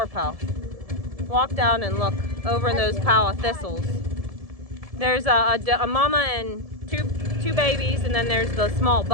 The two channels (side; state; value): left; late; 1.7 ms